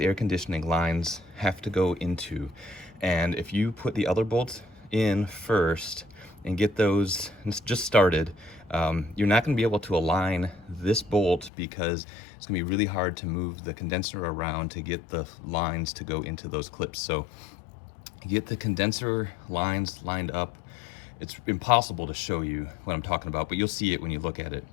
conditioning lines have to go into. And if you put the other bolts in first and get those just started, You're not going to be able to align this bolt because it's going to be really hard to move the condenser around to get the lines to go into those clips. So get the condenser lines lined up. It's impossible to show you what I'm talking about, but you'll see it when you look at it.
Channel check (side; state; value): right; drops out; at 11.5 s